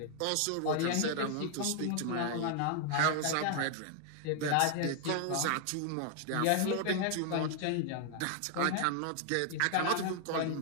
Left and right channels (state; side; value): different; both; correlation 0.00